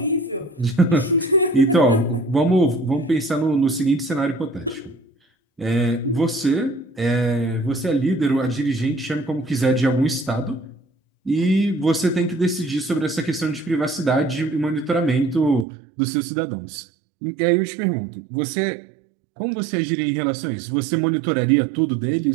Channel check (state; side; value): drops out; left; at 15.7 s